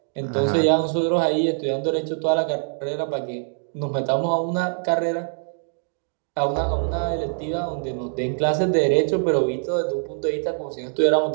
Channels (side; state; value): left; silent; digital silence